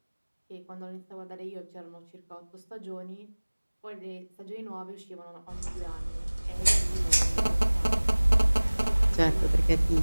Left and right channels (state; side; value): inverted; both; correlation -1.00